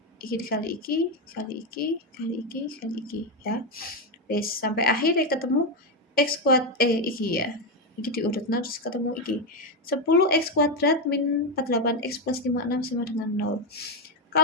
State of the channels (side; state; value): both; normal; correlation 0.07